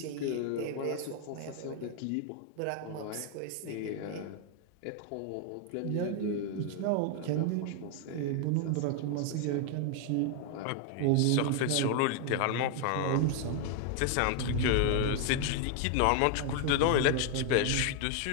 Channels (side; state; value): both; different; correlation 0.00